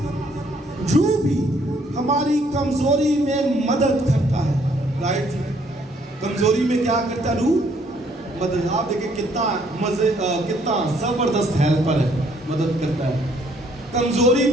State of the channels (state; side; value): normal; both; correlation 0.65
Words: روح بھی ہماری کمزوری میں مدد کرتا ہے. رائٹ, کمزوری میں کیا کرتا ہے روح؟ مدد. آپ دیکھیں کتنا زبردست ہیلپر ہے, مدد کرتا ہے. کمزوری